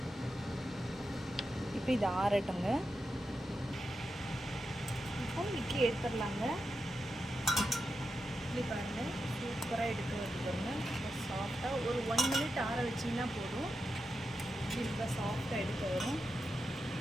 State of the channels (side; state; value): both; normal; correlation 0.88